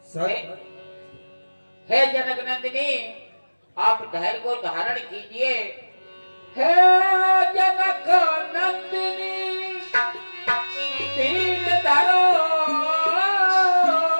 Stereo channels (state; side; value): inverted; both; correlation -1.00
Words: हे जनक नंदिनी, आप धैर्य को धारण कीजिए। हे जनक नंदिनी, धीर धरो,